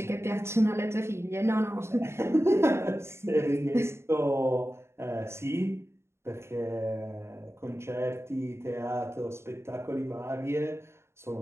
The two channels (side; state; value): left; late; 0.13 ms